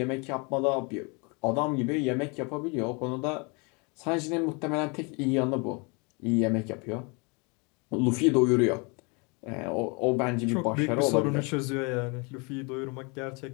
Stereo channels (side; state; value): right; quieter; 31.3 dB